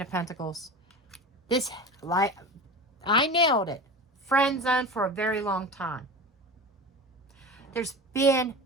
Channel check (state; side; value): normal; both; correlation 0.30